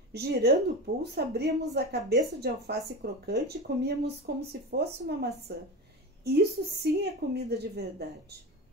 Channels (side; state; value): both; normal; correlation 0.25